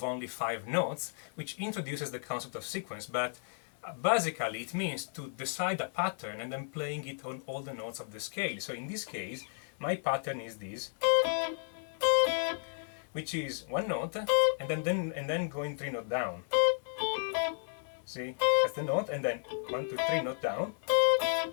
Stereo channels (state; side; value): silent; right; digital silence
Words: only 5 notes, which introduces the concept of sequence, but basically it means to decide a pattern and then playing it on all the notes of the scale. So in this case, my pattern is this, which is 1 note and then going 3 notes down. See, that's the note, and then 1, 2, 3 note down.